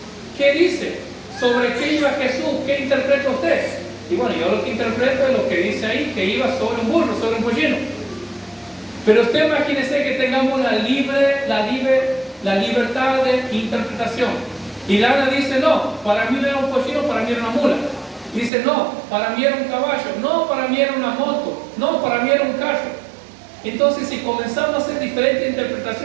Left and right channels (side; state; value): left; drops out; at 18.5 s